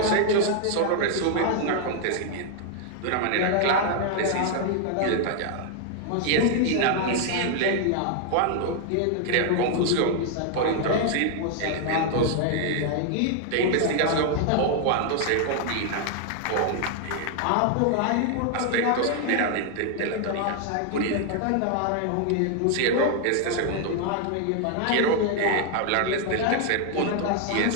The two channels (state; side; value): different; both; correlation 0.00